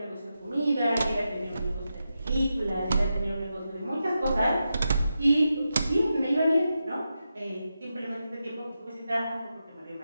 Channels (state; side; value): inverted; both; correlation -0.89